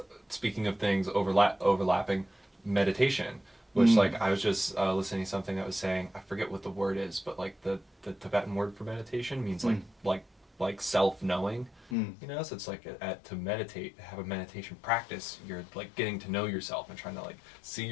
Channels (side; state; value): right; drops out; at 12.0 s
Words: speaking of things overlapping meditation, which like I was just listening to something that was saying, I forget what the word is, but like the Tibetan word for meditation means like self-knowing, so it's like to meditate, have a meditation practice, you're like getting to know yourself and trying to like see